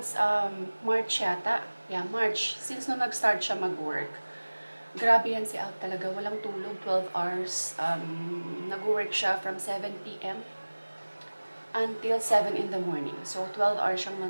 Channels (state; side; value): inverted; both; correlation -1.00